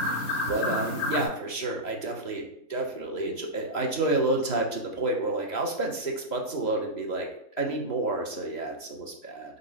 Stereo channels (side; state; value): right; late; 3.0 ms